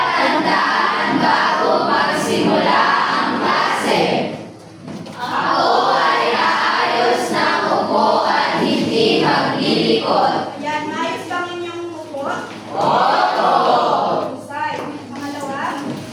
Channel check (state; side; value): identical; both; correlation 1.00